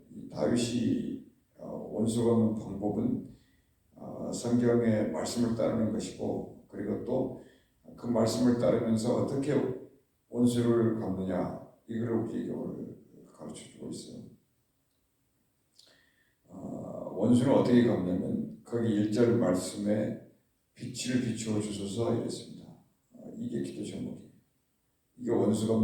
다윗이 원수 갚는 방법은 성경의 말씀을 따르는 것이고, 그리고 또 그 말씀을 따르면서 어떻게 원수를 갚느냐, 이걸 우리에게 오늘 가르쳐주고 있어요. 원수는 어떻게 갚냐면 거기 1절 말씀에 빛을 비추어 주소서 이랬습니다. 이게 기도 제목이에요. 이게 원수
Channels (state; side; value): identical; both; correlation 1.00